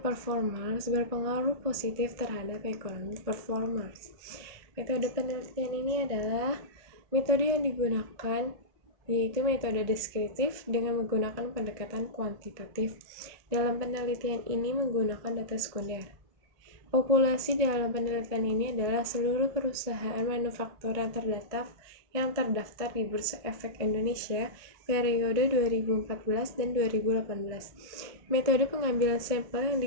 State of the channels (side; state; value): left; late; 1.6 ms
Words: performance berpengaruh positif terhadap economic performance. Metode penelitian ini adalah metode yang digunakan yaitu metode deskriptif dengan menggunakan pendekatan kuantitatif. Dalam penelitian ini menggunakan data sekunder. Populasi dalam penelitian ini adalah seluruh perusahaan manufaktur yang terdaftar di Bursa Efek Indonesia periode 2014 dan 2018. Metode pengambilan sampel yang